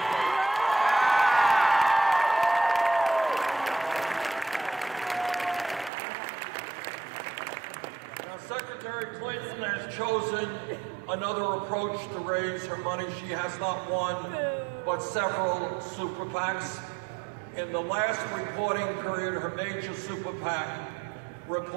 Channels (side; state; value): left; drops out; at 5.9 s